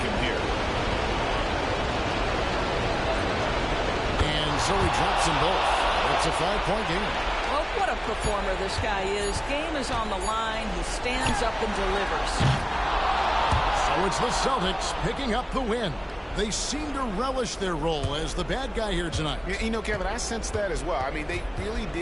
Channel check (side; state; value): both; identical; correlation 1.00